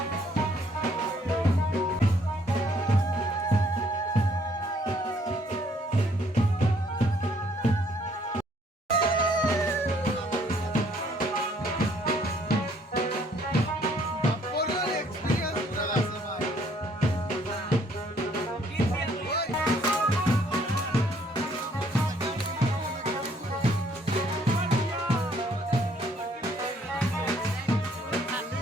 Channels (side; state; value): both; normal; correlation 0.64